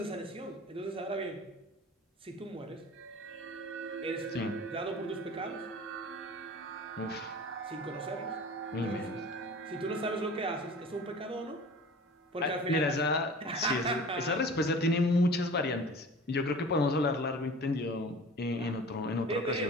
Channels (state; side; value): normal; both; correlation 0.41